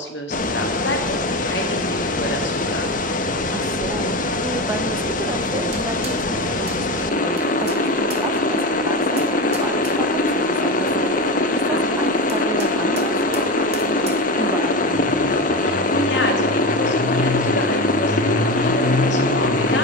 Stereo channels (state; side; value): normal; both; correlation 0.21